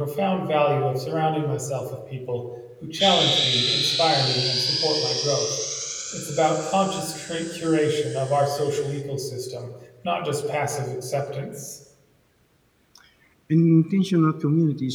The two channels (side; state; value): both; identical; correlation 1.00